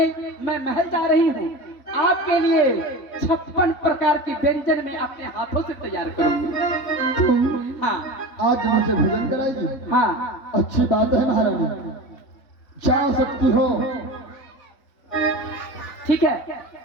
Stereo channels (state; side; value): late; right; 3.6 ms